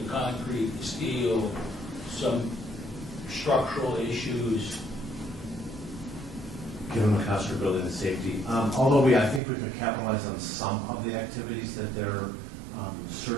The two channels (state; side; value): drops out; left; at 9.4 s